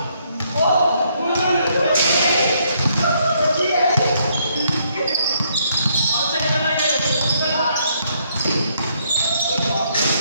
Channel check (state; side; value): inverted; both; correlation -0.71